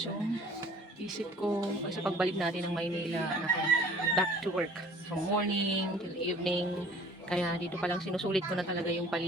yung isip ko. Kasi pagbalik natin ng Maynila, back to work. From morning till evening. Kaya dito pa lang sinusulit ko na talaga yung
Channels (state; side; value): normal; both; correlation 0.50